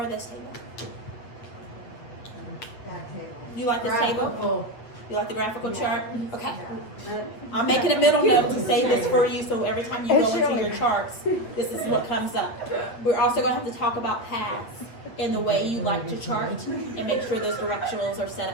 this table. You like this table? You like the graphical chart? Okay. I'm making a middle note to say this for you, so every time you go into your charts, this is what comes up. We're also going to have to talk about paths in the way you like to chart and make sure those directionals are set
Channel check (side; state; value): right; late; 8.6 ms